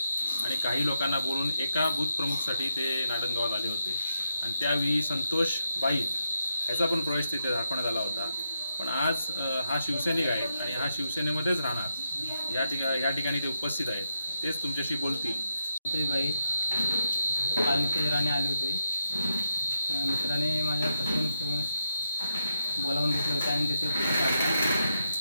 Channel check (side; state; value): both; inverted; correlation -0.83